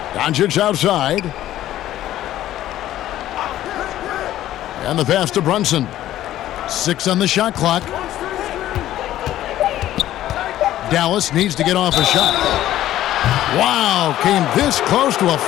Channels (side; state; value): right; quieter; 13.4 dB